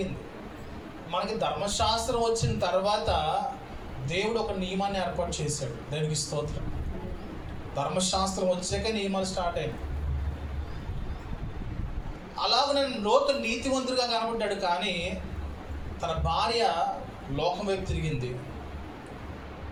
మనకి ధర్మశాస్త్రం వచ్చిన తర్వాత దేవుడు ఒక నియమాన్ని ఏర్పాటు చేశాడు. దేవునికి స్తోత్రం. ధర్మశాస్త్రం వచ్చాక నియమాలు స్టార్ట్ అయినాయి. అలాగనే లోతు నీతివంతుడిగా కనబడ్డాడు, కానీ తన భార్య లోకం వైపు తిరిగింది.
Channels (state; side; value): identical; both; correlation 1.00